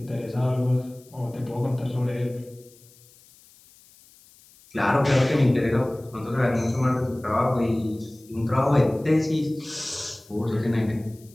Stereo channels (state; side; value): noise; left; hiss, 27 dB below the sound